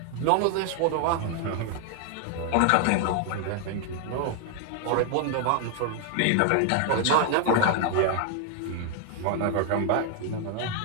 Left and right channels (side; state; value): both; different; correlation 0.00